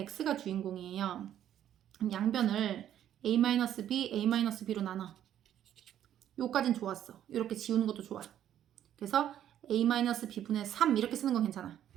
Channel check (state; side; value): quieter; left; 10.9 dB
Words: 주인공이에요. 양변을 A-B, A-B로 나눠. 요까진 좋았어. 이렇게 지우는 것도 좋아. 그래서 A-B분의 3 이렇게 쓰는 건 괜찮아.